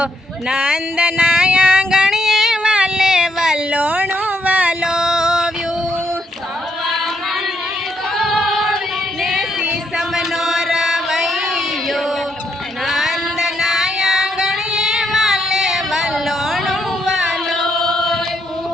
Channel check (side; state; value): both; normal; correlation 0.76